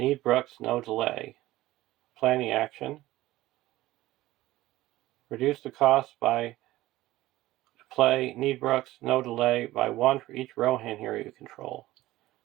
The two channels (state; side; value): quieter; left; 16.7 dB